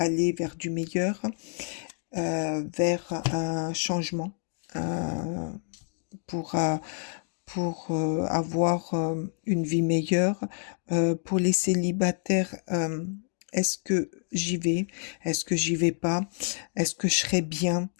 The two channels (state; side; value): silent; right; 59 dB below the other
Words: vers du meilleur, vers un changement, euh, pour, euh, pour avoir une vie meilleure? Pour les célibataires, est-ce que j'y vais? Est-ce que j'y vais pas? Est-ce que je serai bien?